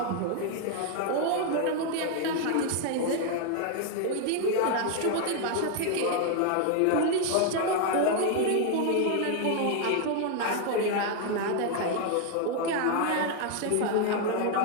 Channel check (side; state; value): both; different; correlation 0.00